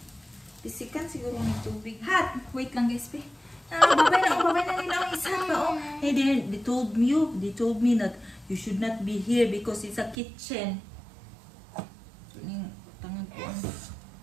Pisikan siguro ng tubig. Hot! Wait lang guys, B. Babay na nila ang isa pa, oh. Hey, they told me that you should not be here because it's a kitchen. So, yung tangad ko ang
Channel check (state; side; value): drops out; left; at 10.2 s